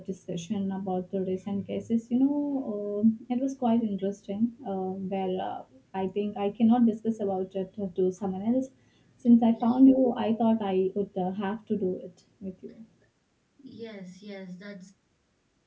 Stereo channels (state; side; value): identical; both; correlation 1.00